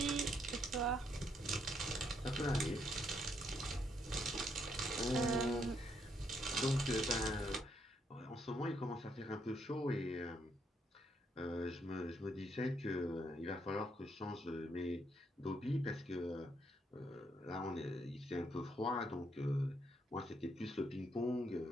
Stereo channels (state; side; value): normal; both; correlation 0.74